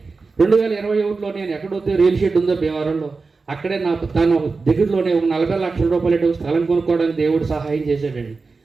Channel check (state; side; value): quieter; left; 4.2 dB